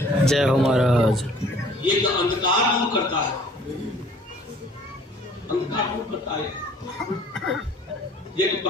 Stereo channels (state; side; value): normal; both; correlation 0.53